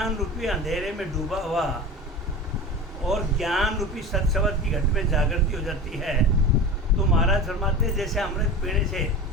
रूपी अंधेरे में डूबा हुआ और ज्ञान रूपी सत्सवत की घट में जागृति हो जाती है। तो महाराज फरमाते हैं जैसे अमृत पीने से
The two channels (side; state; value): both; normal; correlation 0.32